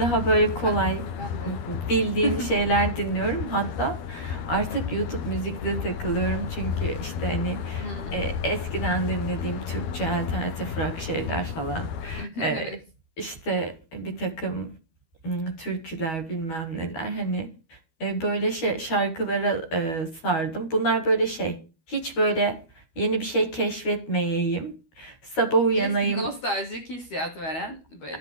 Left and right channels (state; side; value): late; right; 12 ms